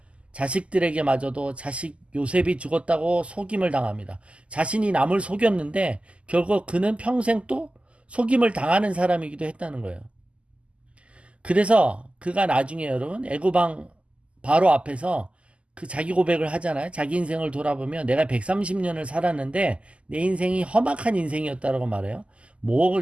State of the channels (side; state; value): left; late; 0.057 ms